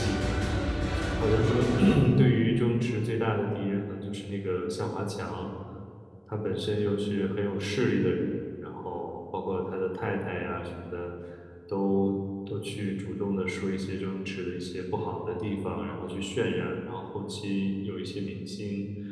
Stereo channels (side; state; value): both; identical; correlation 1.00